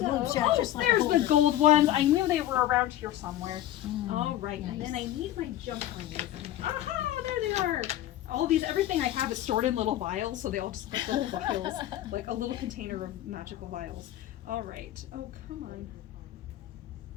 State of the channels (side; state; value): right; quieter; 13.1 dB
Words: chat just like a there's the holder. gold ones. I knew they were around here somewhere. Mm. All right, and then Nice. I need my jump rings. Aha, there they are. All these, everything I have is stored in little vials, so they all just look like little vials, like a little container of magical vials. All right. Oh, come on.